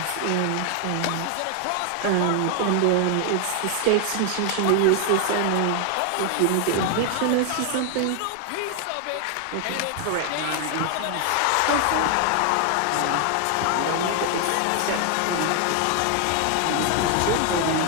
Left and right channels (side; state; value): both; different; correlation 0.00